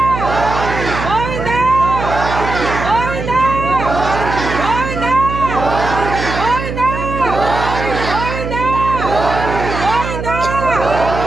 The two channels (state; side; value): noise; right; hum, 6 dB below the sound